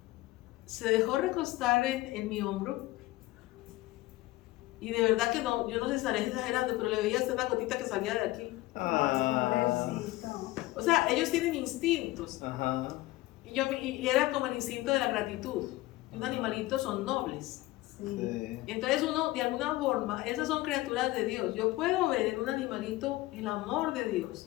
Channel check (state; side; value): quieter; right; 18.5 dB